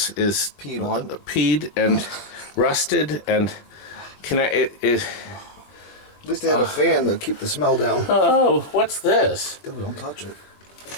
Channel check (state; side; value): late; right; 21 ms